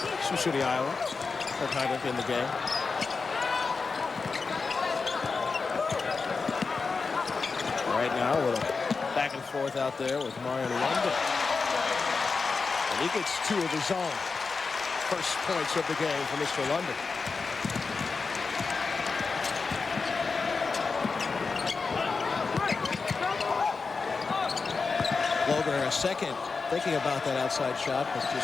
Sioux City, Iowa. Third time in the game. Right now, a little back and forth out there with Marion London. And he gets 2 of his own. First points of the game for Mr. London. Logan a second thinking about that outside shot, but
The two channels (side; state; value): right; quieter; 4.6 dB